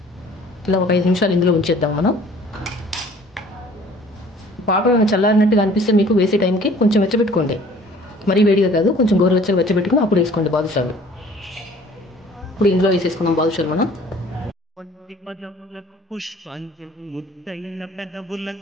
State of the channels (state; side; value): normal; both; correlation 0.52